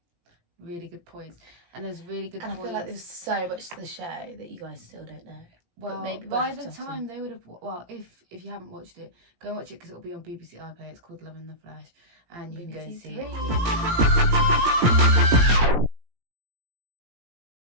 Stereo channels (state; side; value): late; left; 17 ms